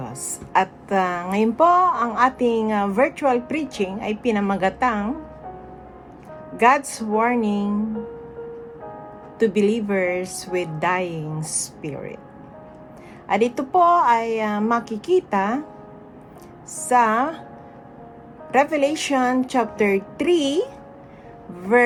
At ngayon po, ang ating virtual preaching ay pinamagatang God's Warning to Believers with Dying Spirit. At ito po ay makikita sa Revelation chapter 3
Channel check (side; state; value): both; identical; correlation 1.00